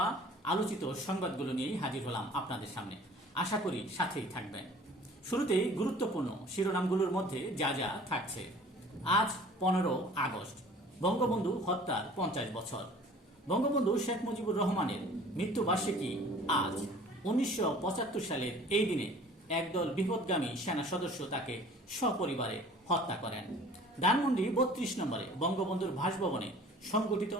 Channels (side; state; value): both; normal; correlation 0.48